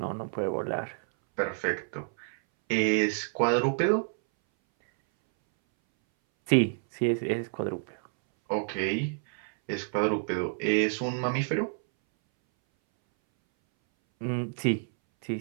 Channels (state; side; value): silent; left; 59 dB below the other